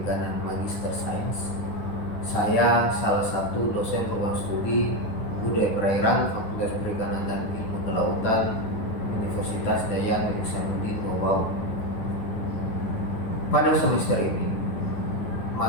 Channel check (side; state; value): right; late; 9.8 ms